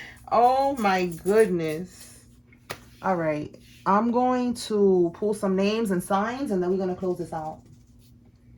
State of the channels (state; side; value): identical; both; correlation 1.00